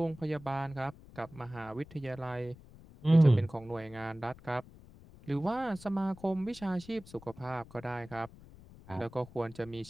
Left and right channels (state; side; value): noise; left; rumble, 20 dB below the sound